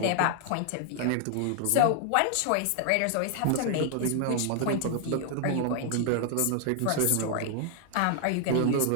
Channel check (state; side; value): different; both; correlation 0.00